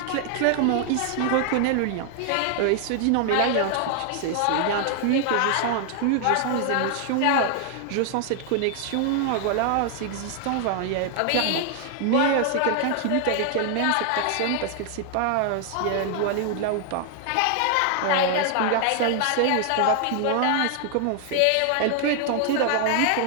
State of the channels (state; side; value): different; both; correlation 0.00